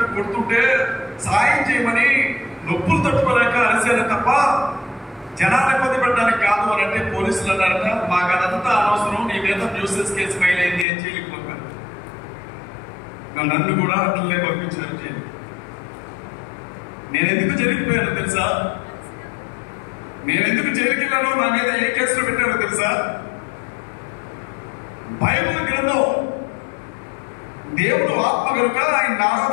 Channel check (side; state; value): right; drops out; at 10.9 s